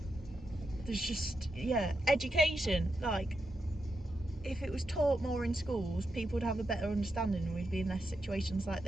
There's just, yeah, education. Like, if it was taught more in schools, people would have a better understanding and we'd be in less situations like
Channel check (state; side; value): normal; both; correlation 0.85